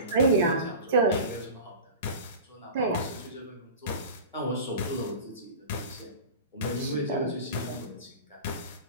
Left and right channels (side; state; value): both; inverted; correlation -0.33